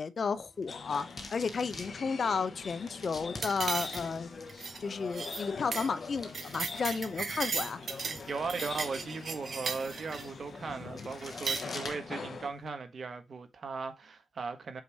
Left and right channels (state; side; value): normal; both; correlation 0.84